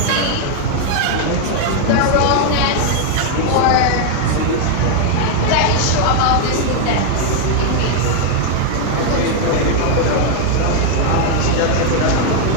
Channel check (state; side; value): different; both; correlation 0.00